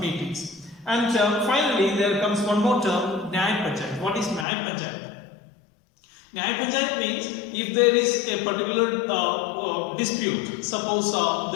And finally, there comes one more term, Nyay Panchayat. What is Nyay Panchayat? Nyay Panchayat means if there is a particular dispute, suppose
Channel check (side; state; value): right; drops out; at 4.5 s